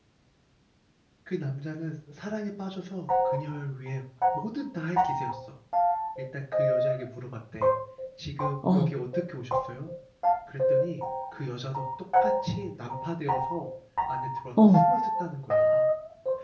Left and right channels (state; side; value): identical; both; correlation 1.00